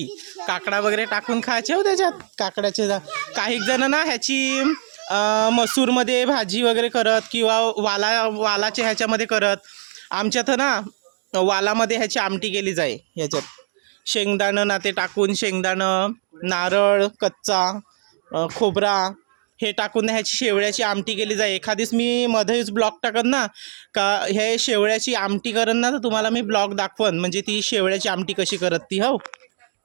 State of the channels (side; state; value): left; silent; digital silence